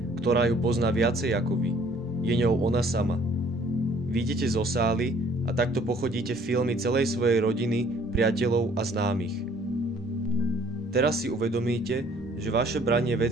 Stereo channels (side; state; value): both; normal; correlation 0.58